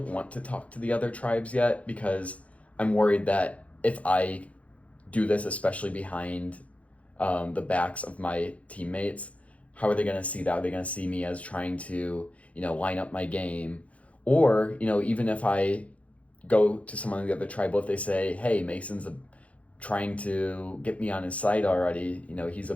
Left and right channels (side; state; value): right; late; 0.065 ms